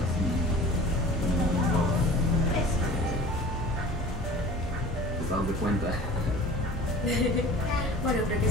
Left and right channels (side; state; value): both; normal; correlation 0.42